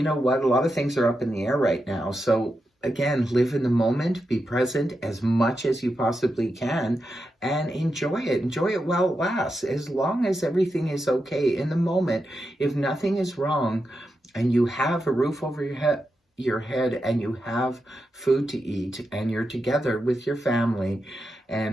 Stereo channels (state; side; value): normal; both; correlation 0.87